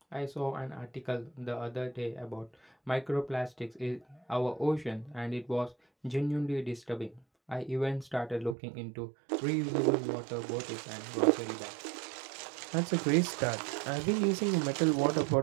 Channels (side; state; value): left; drops out; at 8.6 s